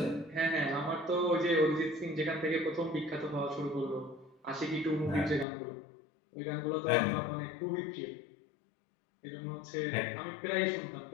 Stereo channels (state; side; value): drops out; right; at 5.5 s